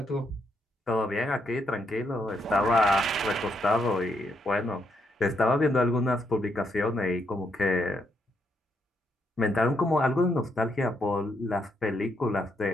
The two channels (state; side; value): normal; both; correlation 0.77